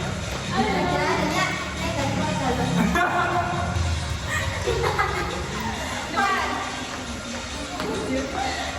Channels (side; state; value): both; identical; correlation 1.00